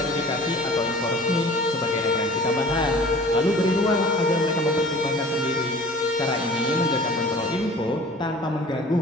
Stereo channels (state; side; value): normal; both; correlation 0.46